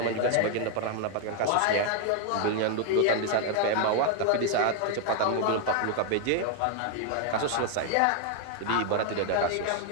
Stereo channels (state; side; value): different; both; correlation 0.01